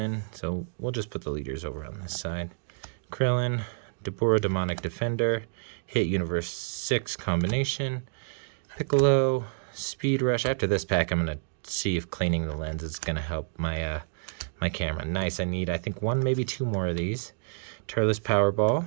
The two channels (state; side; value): silent; left; digital silence